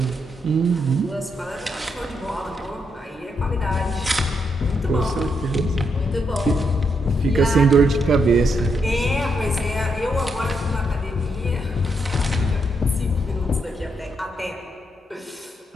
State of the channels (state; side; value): normal; both; correlation 0.79